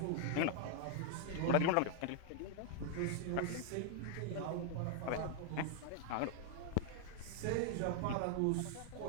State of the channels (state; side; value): different; both; correlation 0.00